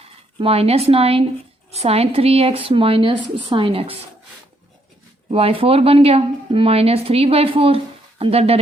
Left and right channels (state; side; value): normal; both; correlation 0.72